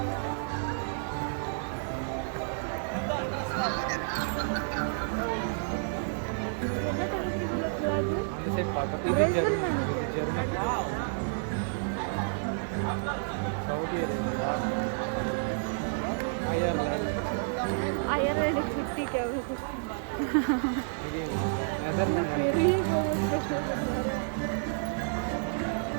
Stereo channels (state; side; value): silent; left; 58 dB below the other